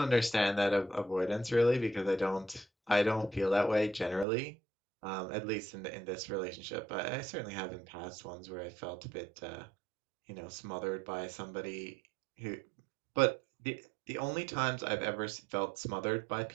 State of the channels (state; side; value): drops out; left; at 4.2 s